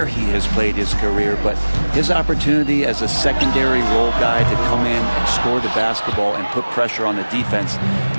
he has played his career. But his opportunity as a secondary role guy to come in and score the basketball and put pressure on the defense,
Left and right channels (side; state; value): both; inverted; correlation -1.00